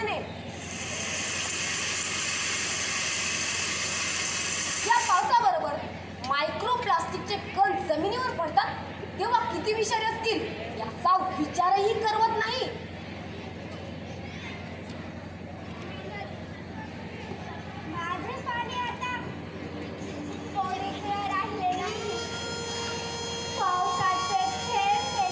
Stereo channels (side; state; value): both; identical; correlation 1.00